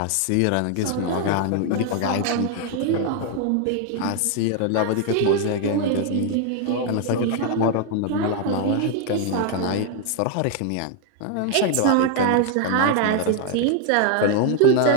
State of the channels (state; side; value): different; both; correlation 0.00